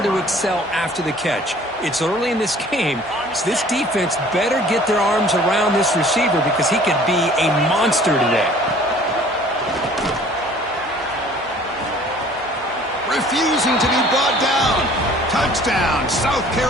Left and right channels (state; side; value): normal; both; correlation 0.52